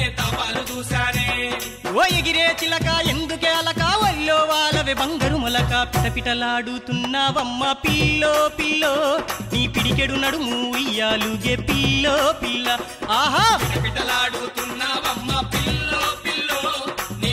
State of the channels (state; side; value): identical; both; correlation 1.00